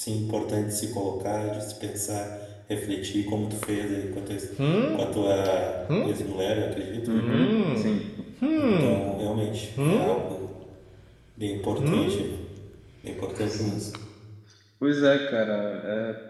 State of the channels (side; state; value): both; identical; correlation 1.00